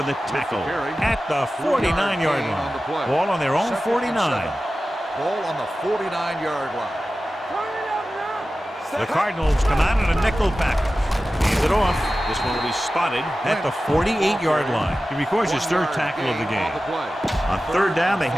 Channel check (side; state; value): both; normal; correlation 0.95